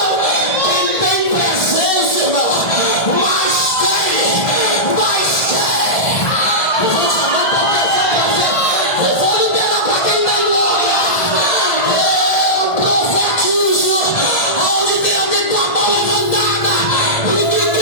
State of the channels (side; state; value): right; late; 1.5 ms